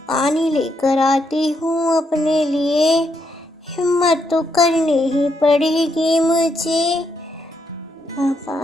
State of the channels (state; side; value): normal; both; correlation 0.78